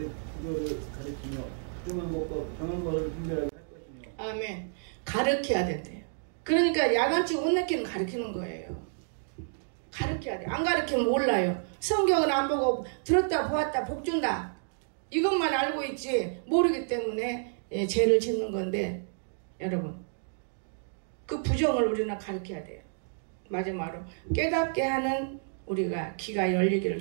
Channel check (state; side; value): silent; left; digital silence